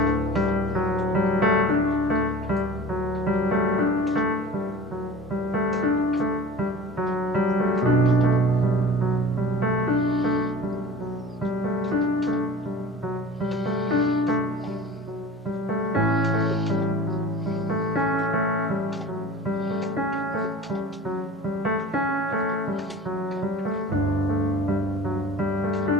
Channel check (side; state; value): both; normal; correlation 0.41